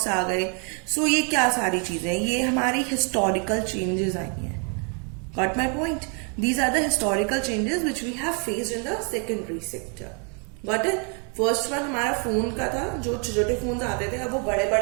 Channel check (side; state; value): left; quieter; 37.6 dB